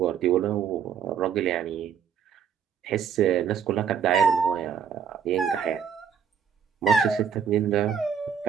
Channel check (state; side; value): quieter; left; 7.6 dB